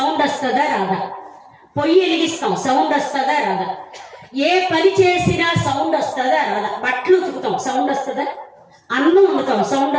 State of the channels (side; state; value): both; identical; correlation 1.00